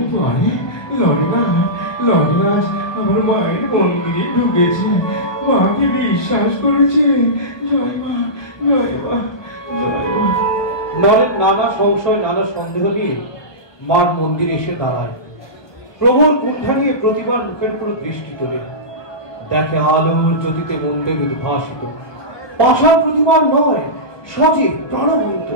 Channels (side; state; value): right; late; 1.2 ms